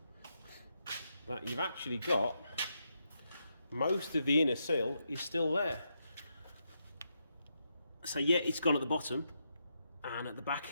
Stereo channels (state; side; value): inverted; both; correlation -0.82